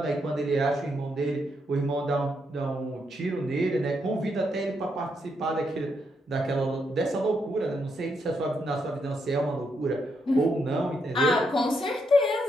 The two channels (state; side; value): normal; both; correlation 0.78